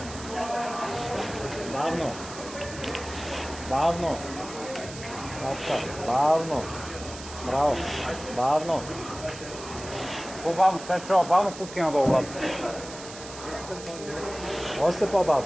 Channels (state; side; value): noise; right; hiss, 13 dB below the sound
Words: Бавно. Бавно. Браво. Бавно. По-бавно, Стефчо, бавно пускай надолу, брат. Още